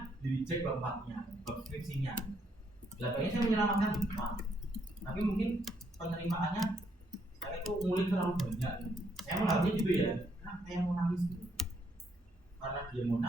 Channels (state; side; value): normal; both; correlation 0.73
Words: di reject bab 4-nya, bab skripsinya. Belakangnya saya menyelamatkan Pak. Tapi mungkin penerimaannya saya itu ngulik terlalu banyak. Saya menganggapnya gitu ya, karena saya mau nangis gitu. Karena dia mau